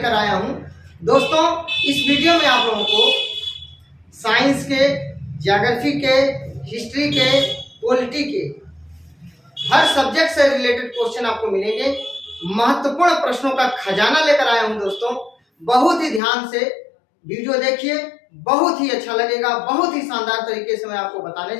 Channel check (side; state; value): right; drops out; at 16.2 s